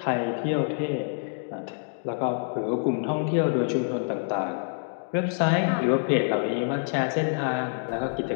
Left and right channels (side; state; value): right; silent; digital silence